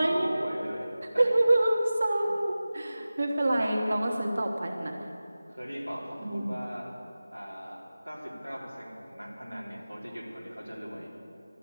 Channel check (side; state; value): both; inverted; correlation -0.97